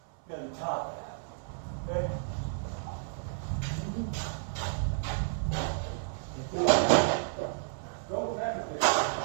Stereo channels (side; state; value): left; silent; 57 dB below the other